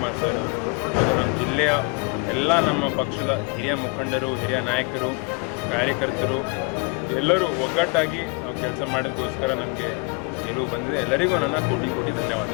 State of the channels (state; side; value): quieter; right; 30.8 dB